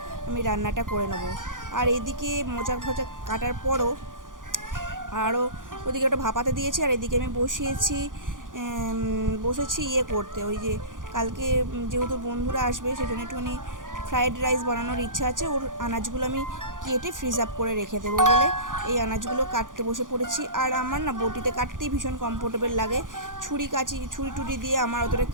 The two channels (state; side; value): late; left; 0.89 ms